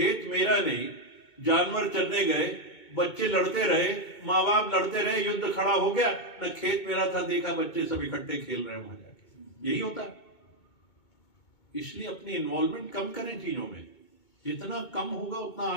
मेरा नहीं, जानवर चरने गए, बच्चे लड़ते रहे, माँ बाप लड़ते रहे, युद्ध खड़ा हो गया। न खेत मेरा था, देखा बच्चे सब इकट्ठे खेल रहे हैं वहां जाके। यही होता है। इसलिए अपनी इन्वॉल्वमेंट कम करें चीजों में, जितना कम होगा उतना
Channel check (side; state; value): right; late; 2.2 ms